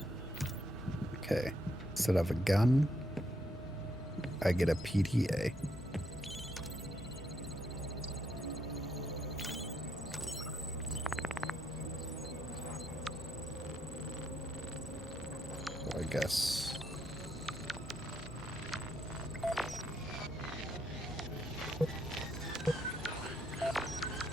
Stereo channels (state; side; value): normal; both; correlation 0.75